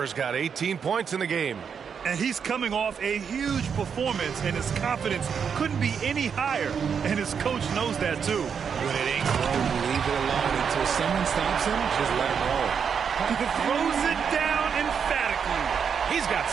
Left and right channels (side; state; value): left; quieter; 6.9 dB